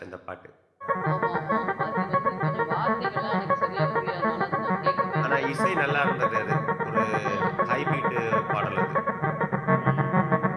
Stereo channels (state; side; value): identical; both; correlation 1.00